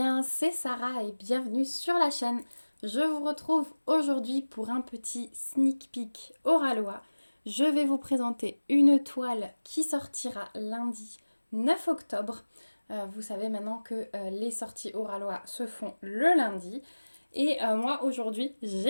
c'est Sarah et bienvenue sur la chaîne. Je vous retrouve aujourd'hui pour un petit sneak peek Oralois. Je vais vous présenter une toile qui sortira lundi 9 octobre. Vous savez maintenant que les sorties Oralois se font le lundi. Et moi aujourd'hui,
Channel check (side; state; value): both; inverted; correlation -1.00